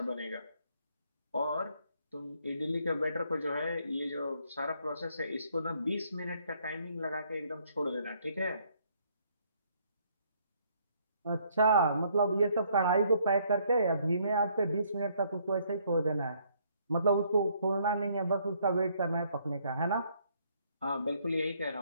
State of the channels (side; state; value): both; inverted; correlation -0.67